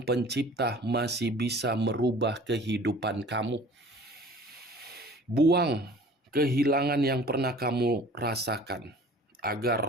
Pencipta masih bisa merubah kehidupan kamu. Buang kehilangan yang pernah kamu rasakan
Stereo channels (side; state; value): both; normal; correlation 0.47